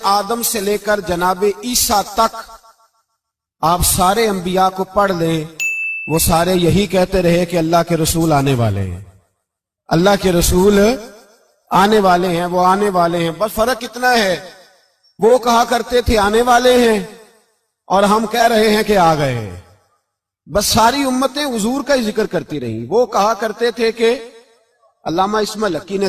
آدم سے لے کر جناب عیسیٰ تک آپ سارے انبیاء کو پڑھ لیں، وہ سارے یہی کہتے رہے کہ اللہ کے رسول آنے والے ہیں، اللہ کے رسول آنے والے ہیں، وہ آنے والے ہیں۔ بس فرق اتنا ہے، وہ کہا کرتے تھے آنے والے ہیں اور ہم کہہ رہے ہیں کہ آ گئے ہیں۔ بس ساری امتیں حضور کا ہی ذکر کرتی رہیں۔ وہ کہا کرتے تھے کہ علامہ اسماعیل حقی نے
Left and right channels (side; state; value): both; identical; correlation 1.00